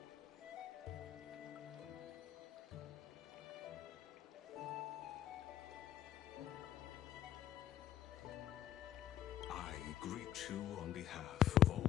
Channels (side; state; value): right; quieter; 11.6 dB